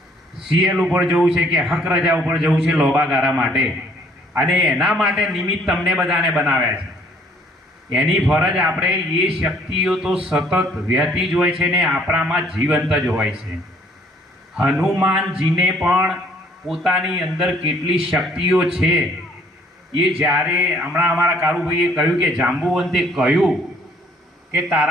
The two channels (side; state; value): both; normal; correlation 0.61